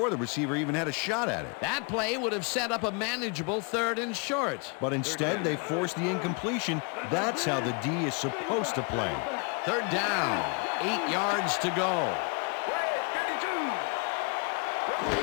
the receiver even had a shot at it. That play would have set up a manageable 3rd and short. But instead, they forced the incompletion. That's how the D is supposed to play. Third down. 8 yards to go.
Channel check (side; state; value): right; quieter; 33.8 dB